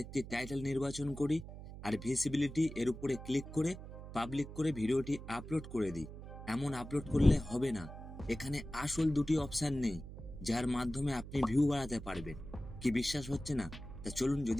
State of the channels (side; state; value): right; noise; hum, 12 dB below the sound